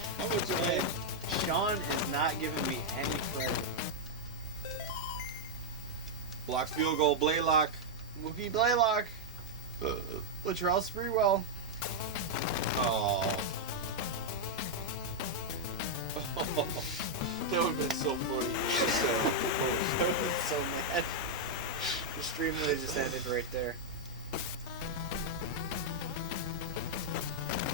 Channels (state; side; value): normal; both; correlation -0.03